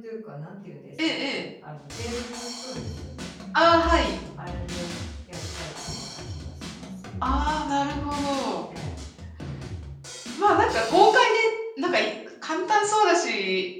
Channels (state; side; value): identical; both; correlation 1.00